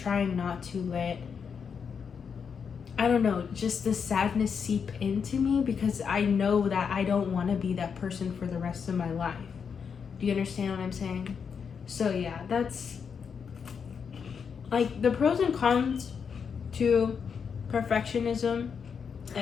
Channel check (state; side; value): quieter; right; 6.5 dB